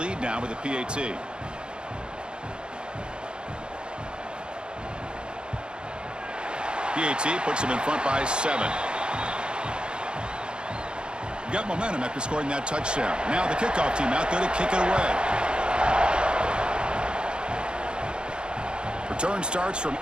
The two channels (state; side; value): late; left; 0.051 ms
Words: now with a PAT. PAT puts them in front by 7. Got momentum after scoring that touchdown. Now the kickoff team out there to kick it away. Return starts from